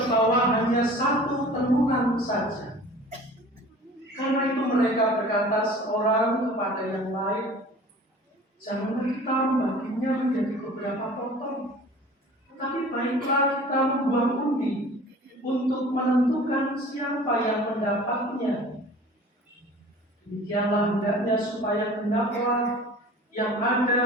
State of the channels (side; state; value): both; normal; correlation 0.44